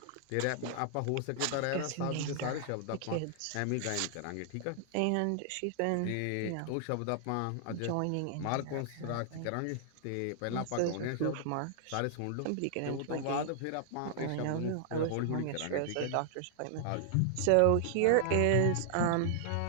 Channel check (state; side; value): different; both; correlation -0.01